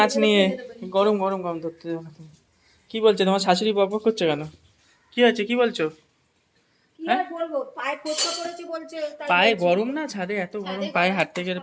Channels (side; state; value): both; identical; correlation 1.00